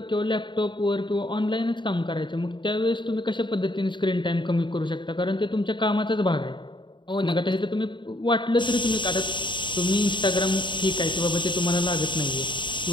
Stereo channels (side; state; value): right; late; 0.23 ms